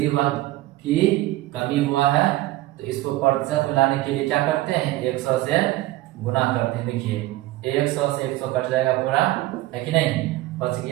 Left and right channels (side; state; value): left; quieter; 17.2 dB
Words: हुआ की कमी हुआ है, तो इसको प्रतिशत बनाने के लिए क्या करते हैं 100 से गुना करते हैं। देखिए 100 से 100 कट जाएगा पूरा, है कि नहीं, बच